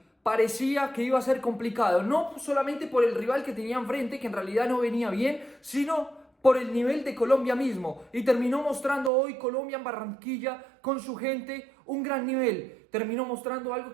parecía que iba a ser complicado, no solamente por el rival que tenía enfrente, que en realidad no venía bien, sino por el nivel de Colombia mismo. Y terminó mostrando hoy Colombia en Barranquilla con su gente un gran nivel. Terminó mostrando algo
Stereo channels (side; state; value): left; drops out; at 9.1 s